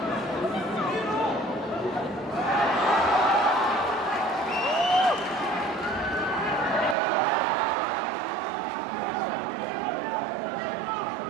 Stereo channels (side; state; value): left; drops out; at 7.0 s